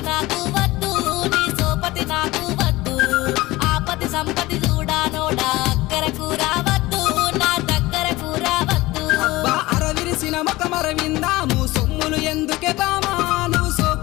నాకు వద్దు, నీ సోపతి నాకు వద్దు. ఆపతి సంపతి చూడానోడా అక్కరకు రావద్దు, నా దగ్గరకు రావద్దు. అరవిరిసిన ముఖమరవింద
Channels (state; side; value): quieter; right; 19.5 dB